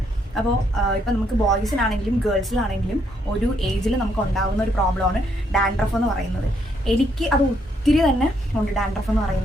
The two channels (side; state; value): both; normal; correlation 0.73